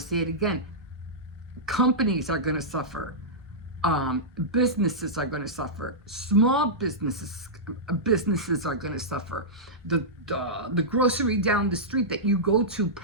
it again. Companies are going to suffer. Businesses are going to suffer. Small businesses are going to suffer. The grocery down the street that you go to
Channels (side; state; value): both; normal; correlation -0.13